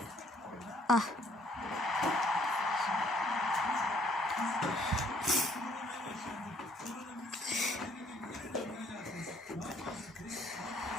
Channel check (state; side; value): normal; both; correlation 0.63